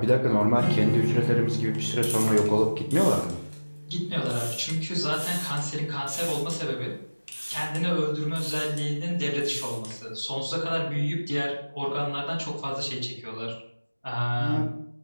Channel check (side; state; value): both; inverted; correlation -1.00